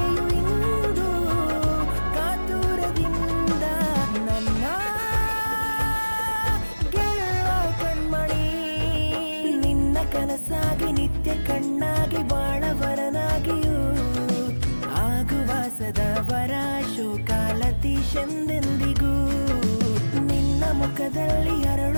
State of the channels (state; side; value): inverted; both; correlation -1.00